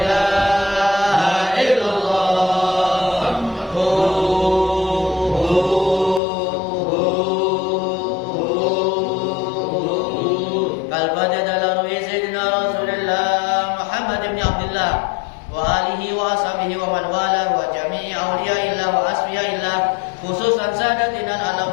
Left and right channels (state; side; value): drops out; right; at 6.2 s